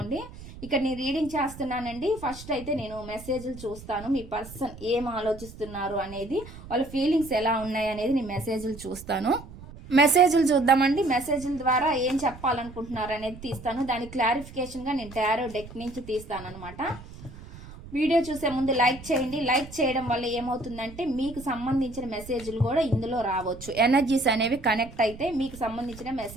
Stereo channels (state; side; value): noise; right; rumble, 16 dB below the sound